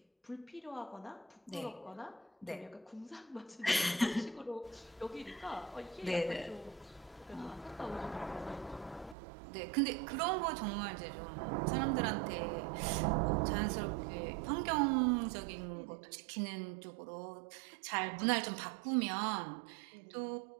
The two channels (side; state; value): left; drops out; at 9.2 s